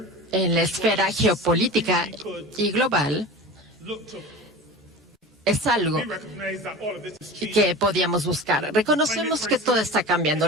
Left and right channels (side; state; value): both; normal; correlation 0.33